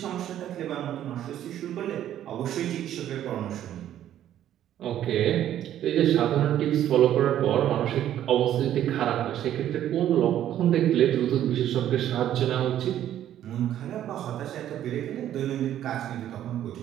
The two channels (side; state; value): left; quieter; 11.5 dB